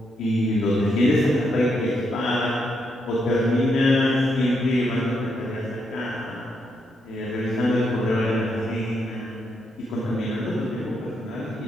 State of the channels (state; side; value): normal; both; correlation 0.79